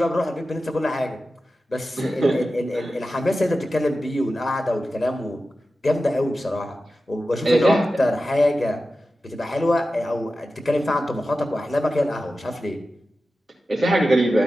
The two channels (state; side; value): normal; both; correlation 0.93